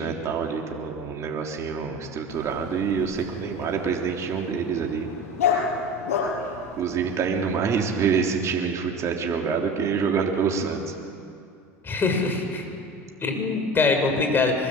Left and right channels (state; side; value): normal; both; correlation 0.34